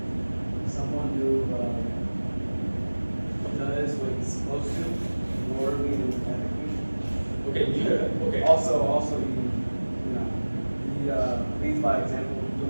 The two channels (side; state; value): both; inverted; correlation -1.00